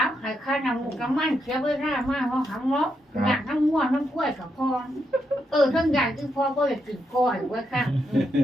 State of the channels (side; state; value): both; normal; correlation 0.81